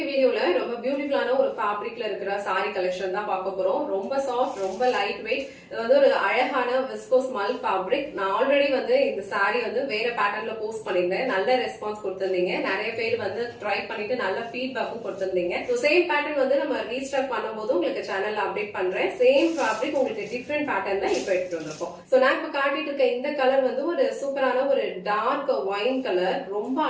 வீடியோல ரொம்ப பியூட்டிஃபுல்லான ஒரு ஃபேப்ரிக்ல இருக்கிற saree collection தான் பார்க்க போறோம். ரொம்ப சாஃப்ட், ரொம்ப லைட் வெயிட். இது வந்து ஒரு அழகான விஸ்கோஸ் மல் ஃபேப்ரிக். நான் ஆல்ரெடி வந்து இந்த saree வந்து வேற பேட்டர்ன்ல போஸ்ட் பண்ணிருந்தேன். நல்ல ரெஸ்பான்ஸ் கொடுத்திருந்தீங்க. நிறைய பேர் வந்து ட்ரை பண்ணிட்டு நல்ல ஃபீட்பேக்கும் கொடுத்திருந்தீங்க. சோ சேம் பேட்டர்ன் வந்து நம்ம ரீஸ்டாக் பண்ணும்போது உங்களுக்கு சேனல்ல அப்டேட் பண்றேன். சேம் ஃபேப்ரிக் உங்களுக்கு டிஃபரண்ட் பேட்டர்ன்ல இப்போ எடுத்துட்டு வந்திருக்கோம். சோ நான் இப்ப காட்டிட்டு இருக்க இந்த கலர் வந்து ஒரு சூப்பரான ஒரு டார்க் ஒயின் கலர். ரொம்ப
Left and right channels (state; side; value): identical; both; correlation 1.00